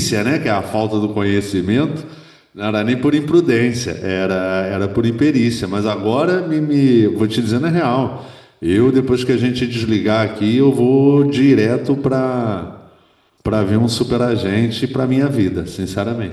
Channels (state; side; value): identical; both; correlation 1.00